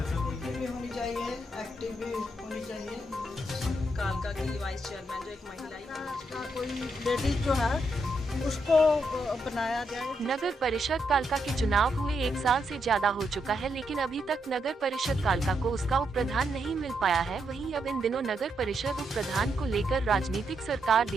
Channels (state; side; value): normal; both; correlation 0.80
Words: ऐसा कोई भी होनी चाहिए, एक्टिव भी होनी चाहिए। कालका की वाइस चेयरमैन जो एक महिला का कोई लेडीज जो है उसको बनाया जाए। नगर परिषद कालका के चुनाव हुए 1 साल से ज्यादा हो चुका है, लेकिन अभी तक नगर परिषद कालका को उसका उप प्रधान नहीं मिल पाया है। वहीं अब इन दिनों नगर परिषद उप प्रधान को लेकर राजनीतिक सरकार